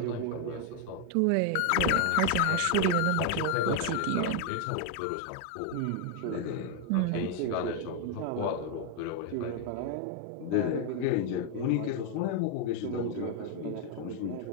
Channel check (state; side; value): different; both; correlation 0.01